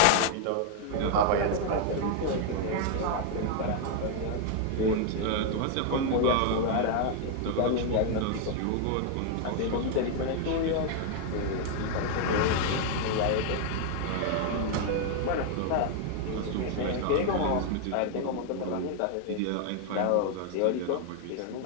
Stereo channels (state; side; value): different; both; correlation 0.00